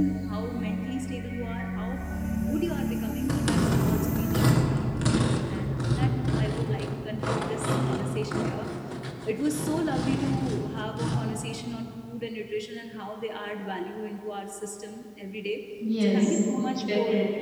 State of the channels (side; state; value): both; identical; correlation 1.00